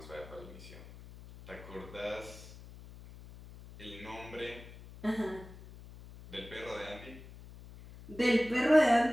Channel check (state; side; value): noise; left; hum, 17 dB below the sound